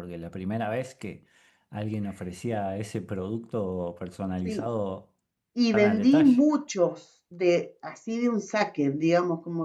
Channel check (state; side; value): identical; both; correlation 1.00